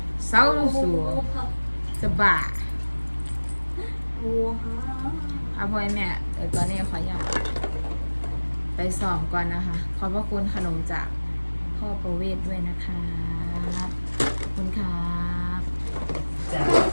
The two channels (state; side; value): inverted; both; correlation -1.00